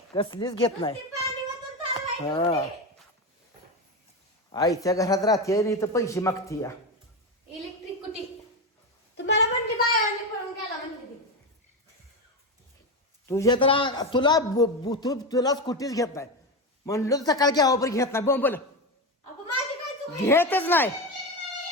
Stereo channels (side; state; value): both; normal; correlation 0.16